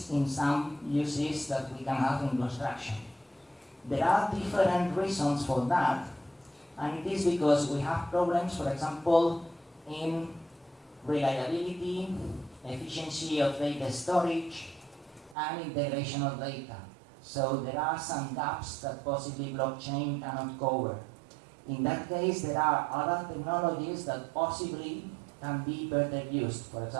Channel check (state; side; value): drops out; left; at 15.4 s